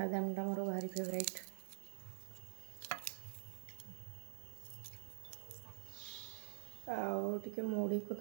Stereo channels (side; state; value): left; silent; digital silence